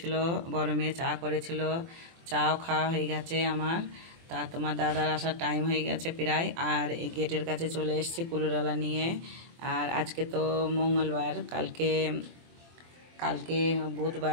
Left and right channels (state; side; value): late; left; 24 ms